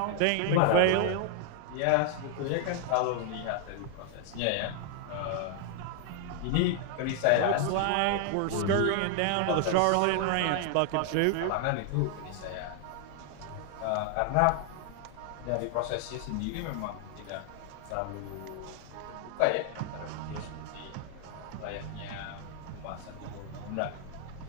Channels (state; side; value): different; both; correlation 0.00